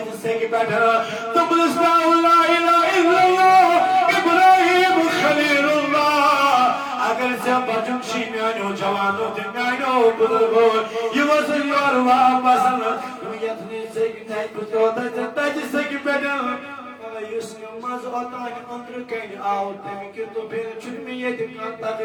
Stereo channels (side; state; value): both; identical; correlation 1.00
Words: سے کی بیٹھر تم اسلام لا الہ الا اللہ ابراہیم خلیل اللہ اگر سے بچن شی میانو جوانو دن میانو بزرگو یہ وزن یور واپس یتنی سے کی نہیں کچھ ہوتا ہے تاجی سے کی بیٹھن یس نماز ہوتا ہے اندر کہیں آؤتے ہیں کہ تو پھر چھن میں یہ دکان تک